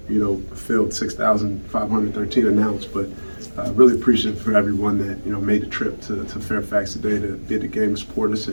filled 6,513 announced. But really appreciative for everyone that, made the trip to Fairfax today to be at the game and support us.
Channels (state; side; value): inverted; both; correlation -1.00